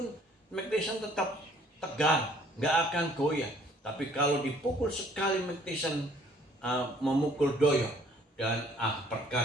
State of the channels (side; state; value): both; normal; correlation 0.59